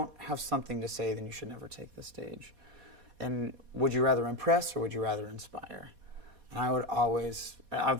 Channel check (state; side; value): late; left; 4.2 ms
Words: have something to say, then you should never take the stage. And would you rather impress or would you rather inspire? And I would always,